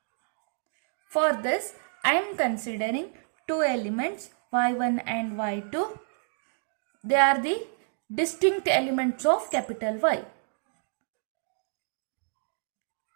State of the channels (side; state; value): left; silent; digital silence